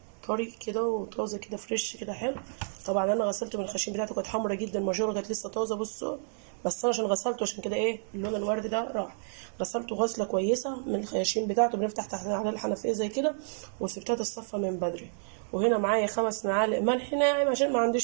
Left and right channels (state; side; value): silent; left; digital silence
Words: طري كده وطازه كده فريش كده حلو. طبعا انا غسلته من الخشين بتاعته، كانت حمرا جدا، الماجوره كانت لسه طازه. بصوا بس انا عشان غسلته عشان كده ايه اللون الورد ده راح. غسلته غسله كويسه من الخياشيم بتاعته، بنفتح تحت على الحنفيه زي كده، وسبتها تتصفى من بدري. وهنا معايا 5 معالق ملح ناعم عشان ما